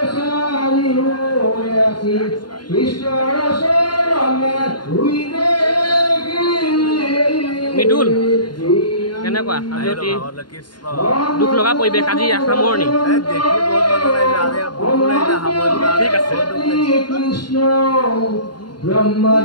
মৃদুল কেনেকুৱা দুখ লগা পৰিৱেশ আজি সামৰণি ঠিক আছে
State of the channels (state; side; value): late; right; 0.71 ms